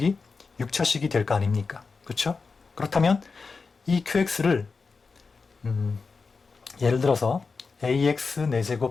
6차식이 될 거 아닙니까? 그쵸? 그렇다면 이 QX를 예를 들어서 ax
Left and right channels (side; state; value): right; quieter; 4.6 dB